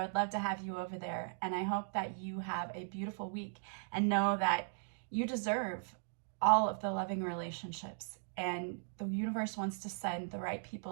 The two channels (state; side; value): silent; left; digital silence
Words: would love to have you over there. And I hope that you have a beautiful week and know that you deserve all of the loving relationships. And the universe wants to send the right